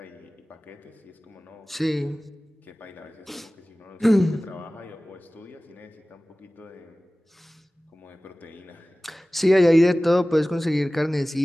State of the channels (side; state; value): both; normal; correlation 0.98